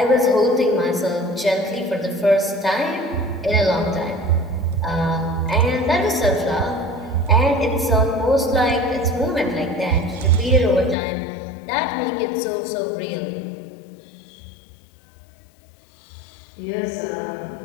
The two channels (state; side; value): drops out; right; at 11.0 s